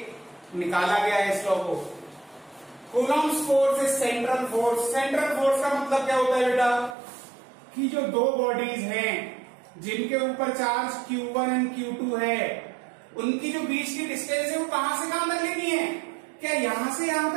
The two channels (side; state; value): left; drops out; at 7.0 s